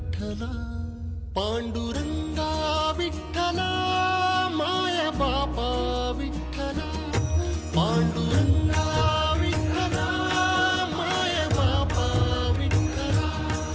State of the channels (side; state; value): both; identical; correlation 1.00